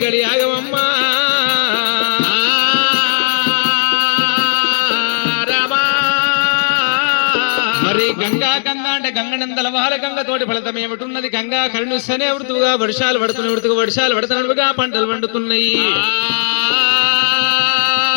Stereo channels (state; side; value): silent; right; digital silence